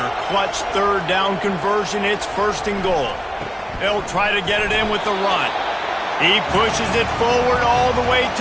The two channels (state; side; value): identical; both; correlation 1.00